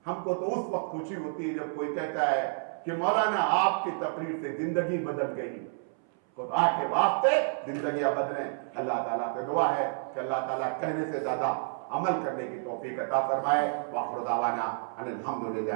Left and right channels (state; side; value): silent; left; 58 dB below the other